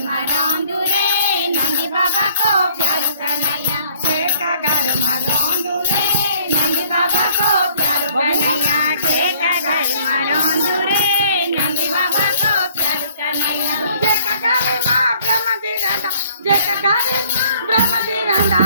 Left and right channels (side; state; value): both; inverted; correlation -0.58